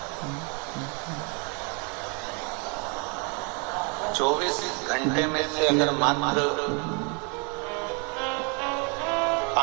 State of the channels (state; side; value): quieter; left; 34.7 dB